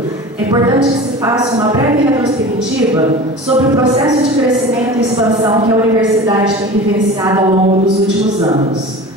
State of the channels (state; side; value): normal; both; correlation 0.35